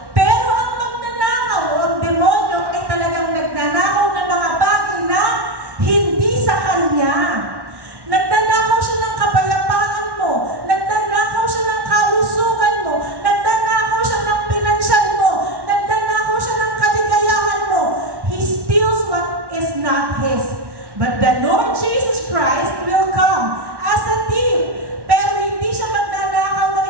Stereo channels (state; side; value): late; left; 1.1 ms